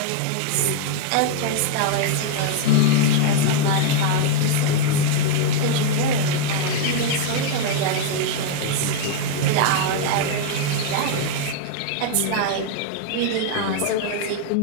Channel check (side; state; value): both; different; correlation 0.00